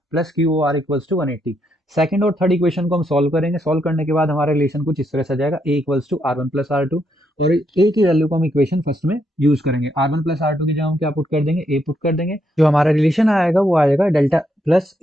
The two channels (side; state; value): both; normal; correlation 0.77